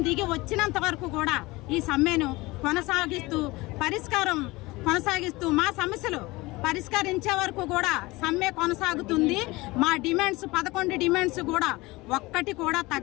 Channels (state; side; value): quieter; right; 21.6 dB